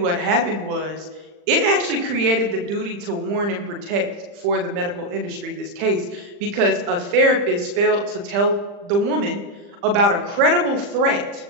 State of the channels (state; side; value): late; left; 40 ms